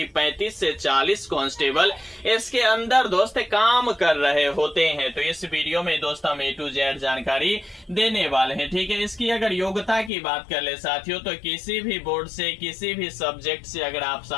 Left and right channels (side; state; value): right; drops out; at 10.1 s